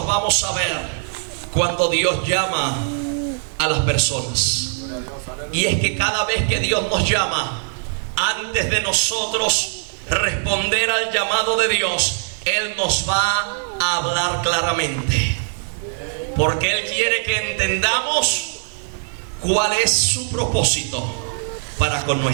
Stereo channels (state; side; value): silent; left; 65 dB below the other